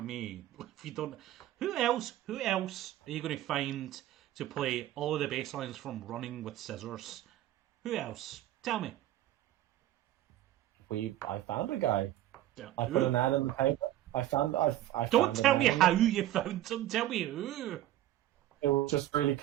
me. If you don't, who else are you going to find to play all of the bass lines from Running with Scissors? Who else? Tell me. I found a guy. Yeah. I put an ad in the paper. Don't tell me how you found him. Tell me who. It was just really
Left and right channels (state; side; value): quieter; left; 13.7 dB